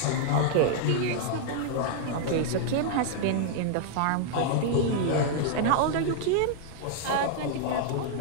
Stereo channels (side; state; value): both; different; correlation 0.00